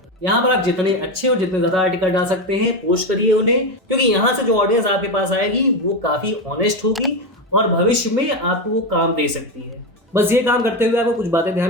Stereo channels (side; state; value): both; normal; correlation 0.14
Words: यहाँ पर आप जितने अच्छे और जितने ज्यादा आर्टिकल डाल सकते हैं पोस्ट करिए उन्हें, क्योंकि यहाँ से जो ऑडियंस आपके पास आएगी वो काफी ऑनेस्ट होगी और भविष्य में आपको वो काम दे सकती है। बस ये काम करते हुए आपको कुछ बातें